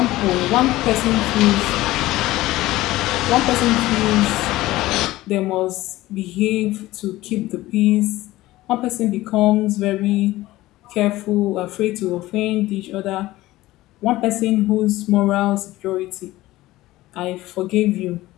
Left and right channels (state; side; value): quieter; right; 17.2 dB